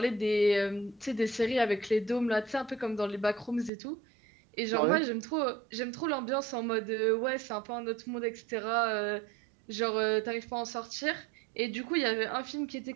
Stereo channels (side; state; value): left; drops out; at 3.7 s